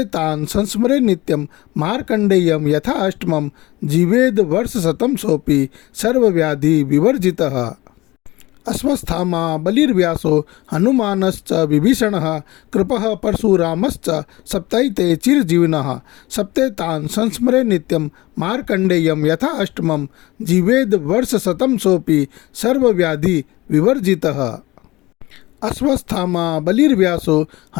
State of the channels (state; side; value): quieter; right; 20.1 dB